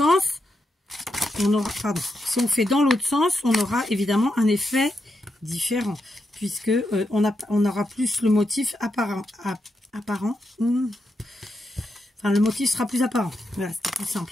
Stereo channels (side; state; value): both; normal; correlation 0.84